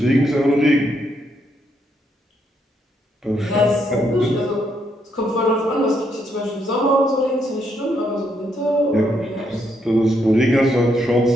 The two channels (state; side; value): normal; both; correlation 0.76